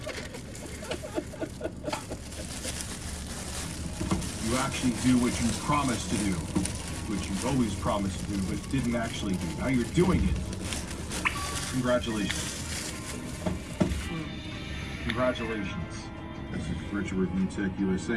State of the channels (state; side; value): identical; both; correlation 1.00